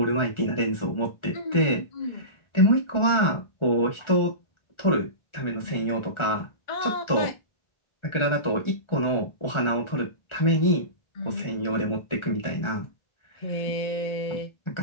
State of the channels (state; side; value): late; right; 1.4 ms